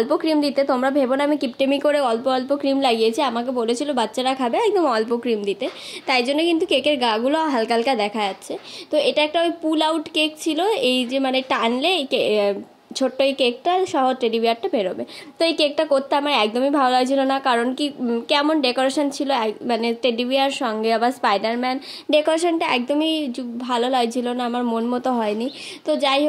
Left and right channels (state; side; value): identical; both; correlation 1.00